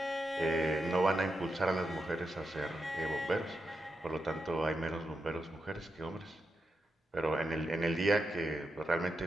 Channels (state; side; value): normal; both; correlation 0.86